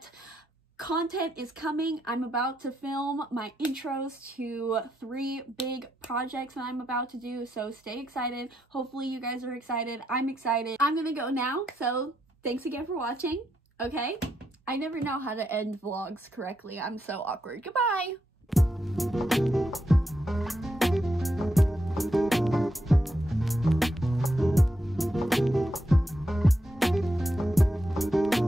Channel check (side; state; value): both; normal; correlation 0.82